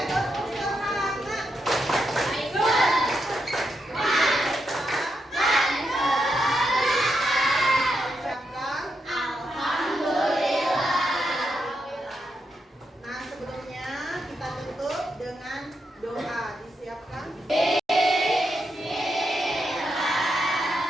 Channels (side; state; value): both; normal; correlation 0.83